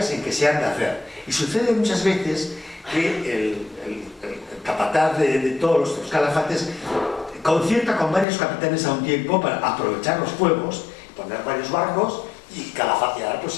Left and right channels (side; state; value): right; drops out; at 8.2 s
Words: en que se han de hacer. Y sucede muchas veces que el capataz de todos los calafates concierta con varios capitanes a un tiempo para aprovechar los fuegos, poner varios barcos y calafatear